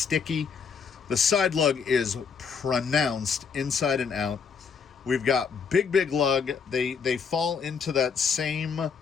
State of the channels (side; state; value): right; quieter; 6.1 dB